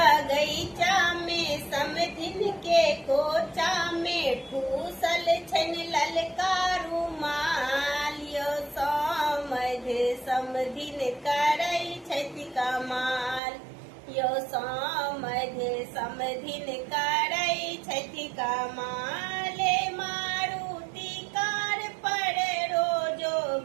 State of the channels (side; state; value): left; drops out; at 13.4 s